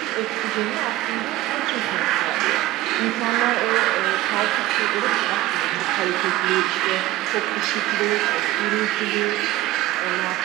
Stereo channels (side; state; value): left; quieter; 16.0 dB